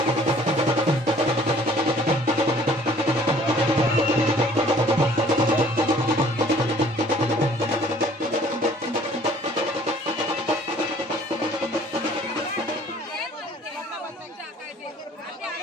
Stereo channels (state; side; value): normal; both; correlation 0.55